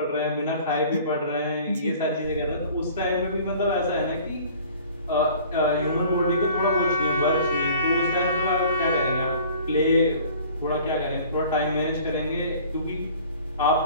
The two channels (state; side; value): inverted; both; correlation -0.48